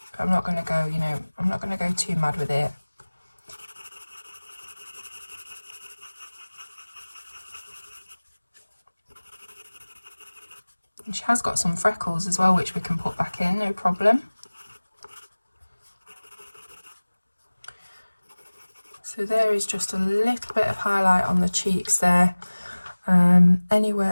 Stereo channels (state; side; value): inverted; both; correlation -1.00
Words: I'm not going to go, you know, I'm not going to go too mad with it. And she has got some freckles as well, which we can put back in, no problem. So there is just a little bit of highlight on the cheeks there.